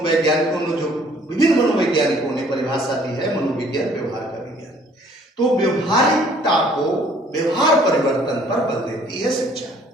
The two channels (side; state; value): both; normal; correlation 0.59